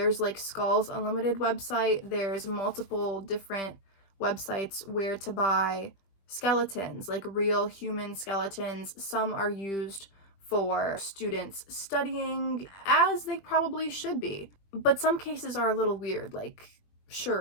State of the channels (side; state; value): right; late; 21 ms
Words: like Skulls Unlimited website. There's multiple different websites where to buy skeletons, like real human skeletons. Some are used for students studying, as they probably should be. But some cases are a little weird, like,